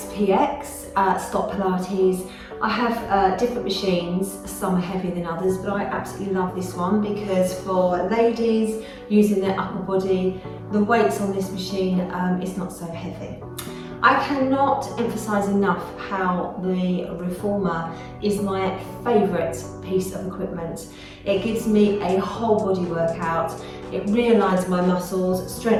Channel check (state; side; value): identical; both; correlation 1.00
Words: stop Pilates. I have different machines, some are heavier than others, but I absolutely love this one because for ladies using their upper body, the weights on this machine is not so heavy. I cannot emphasise enough how the Reformer is my favourite piece of equipment. It gives me a whole body workout. It realigns my muscles,